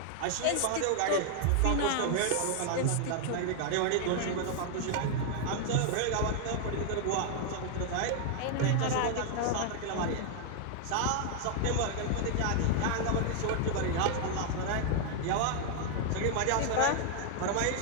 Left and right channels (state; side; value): different; both; correlation 0.00